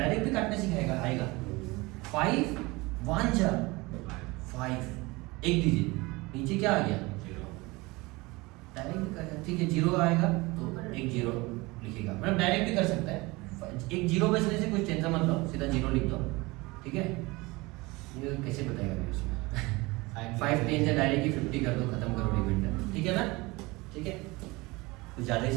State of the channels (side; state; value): left; quieter; 23.2 dB